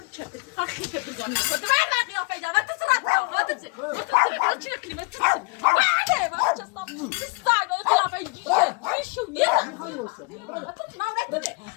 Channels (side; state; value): right; quieter; 29.6 dB